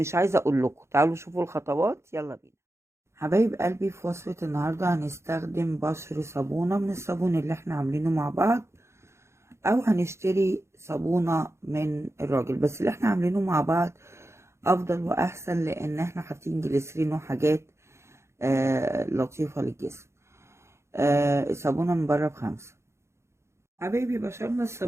عايزة اقول لكم. تعالوا شوفوا الخطوات، يلا بينا حبايب قلبي. في وصفة النهاردة هنستخدم بشر صابونة من الصابون اللي احنا عاملينه مع بعض، او هنشتري صابونة من الراجل، بس اللي احنا عاملينه مع بعض افضل واحسن، لان احنا حاطين جليسرين وحاجات لطيفة للجسم. الصابونة من بره ب5. حبايبي بشرنا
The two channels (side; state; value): left; late; 0.13 ms